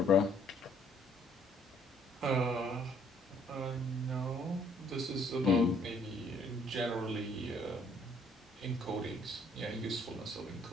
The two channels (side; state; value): both; normal; correlation 0.63